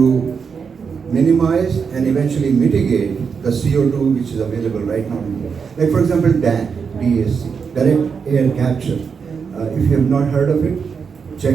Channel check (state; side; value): quieter; left; 6.0 dB